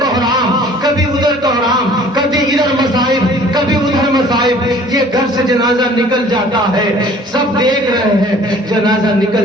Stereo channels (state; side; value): normal; both; correlation 0.51